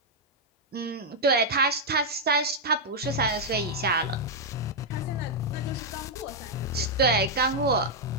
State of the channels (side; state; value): both; normal; correlation -0.03